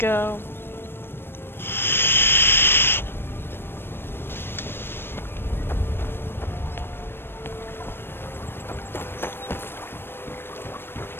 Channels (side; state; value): right; late; 0.10 ms